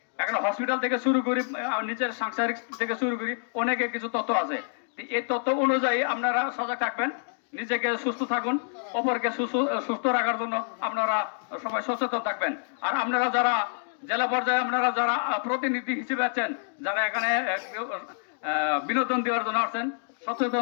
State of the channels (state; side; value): silent; right; digital silence